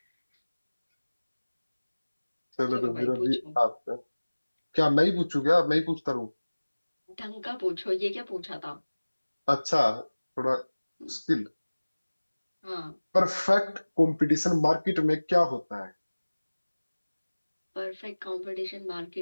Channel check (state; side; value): inverted; both; correlation -1.00